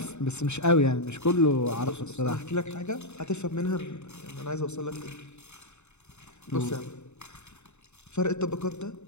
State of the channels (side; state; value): right; late; 0.82 ms